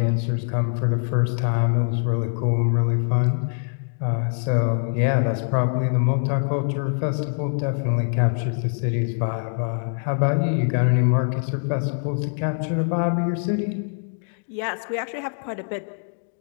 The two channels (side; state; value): right; silent; 61 dB below the other